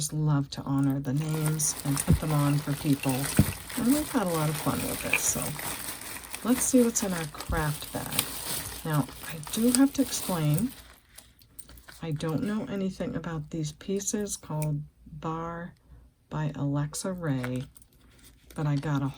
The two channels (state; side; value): identical; both; correlation 1.00